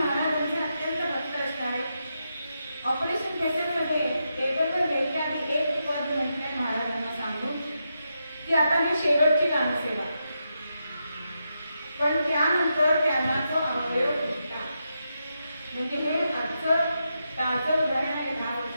अत्यंत भक्त असणारे ऑपरेशन थिएटरमध्ये टेबलवर घ्यायच्या आधी एक पद म्हटलंय महाराजांना सांगून की आता मी शेवटची गानसेवा. पण त्यानंतर त्यांना तो अवयव फुटला. म्हणजे हे आजचं ताजं उदाहरण आहे 10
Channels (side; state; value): both; inverted; correlation -0.85